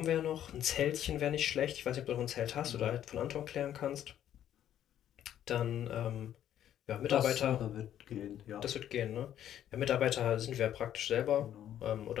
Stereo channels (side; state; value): right; quieter; 10.9 dB